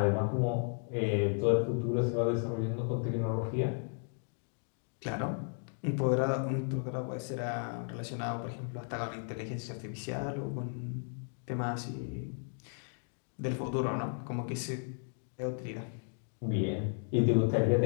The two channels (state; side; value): silent; right; 55 dB below the other